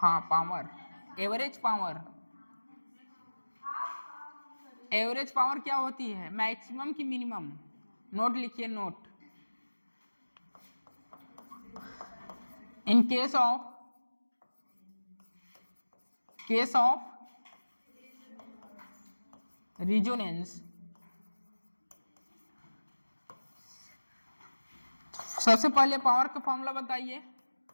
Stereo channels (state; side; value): inverted; both; correlation -1.00